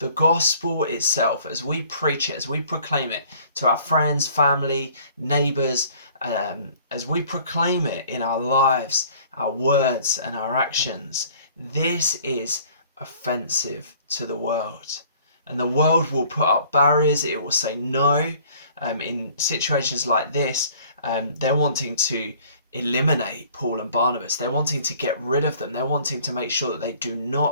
gospel itself, as we preach it, as we proclaim it to our friends, family, neighbours, as we proclaim it in our lives, our words and our actions, this is offensive to the world. And the world will put up barriers, it will say no. In situations like this, they're wanting to eliminate Paul and Barnabas. They're wanting to get rid of them. They're wanting to make sure that they do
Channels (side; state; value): both; inverted; correlation -0.54